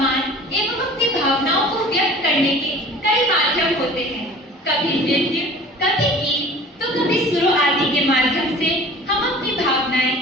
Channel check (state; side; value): normal; both; correlation 0.44